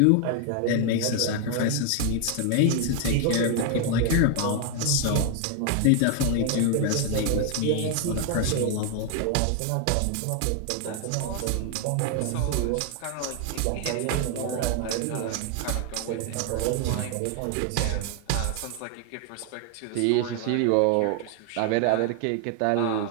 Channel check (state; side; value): different; both; correlation 0.00